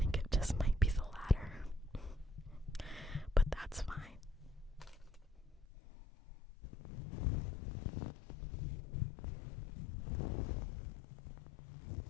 it just might be the latter, but that's fine.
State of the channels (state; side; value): drops out; right; at 5.7 s